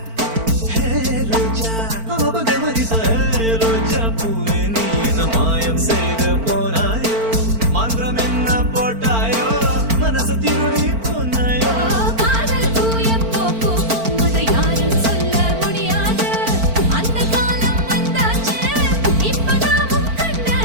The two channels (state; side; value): late; left; 4.5 ms